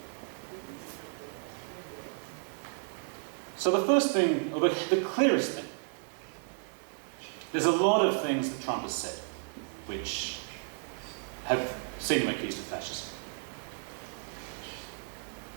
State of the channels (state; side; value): silent; left; 56 dB below the other